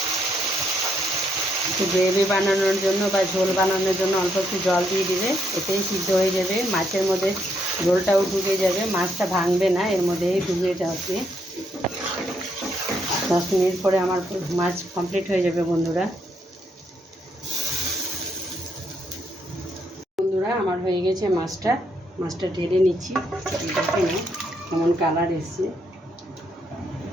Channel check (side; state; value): both; normal; correlation 0.75